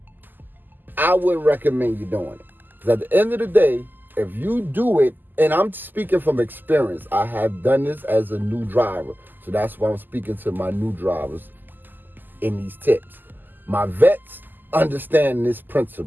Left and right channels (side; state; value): left; late; 0.089 ms